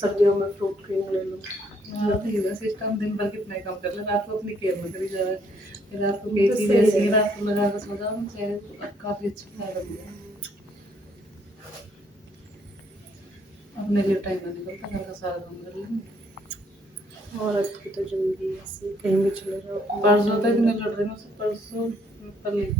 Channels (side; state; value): both; normal; correlation 0.68